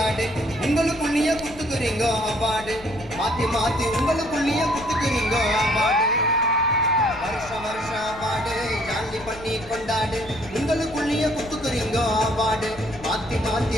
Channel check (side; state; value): left; noise; rumble, 18 dB below the sound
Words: உங்களுக்குள்ளேயே குத்துக்குறீங்க அவார்டு மாத்தி மாத்தி உங்களுக்குள்ளேயே குத்துக்குறீங்க அவார்டு வருஷ அவார்டு ஜாலி பண்ணி கொண்டாடு உங்களுக்குள்ளேயே குத்துக்குறீங்க அவார்டு மாத்தி மாத்தி